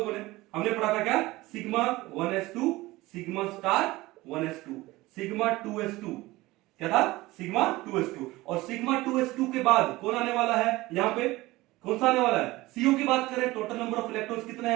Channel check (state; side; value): quieter; left; 19.4 dB